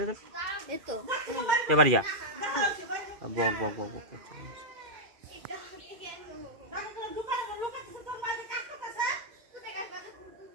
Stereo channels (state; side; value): late; left; 2.4 ms